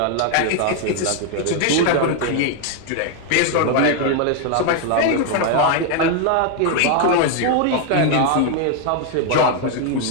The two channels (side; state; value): both; different; correlation 0.01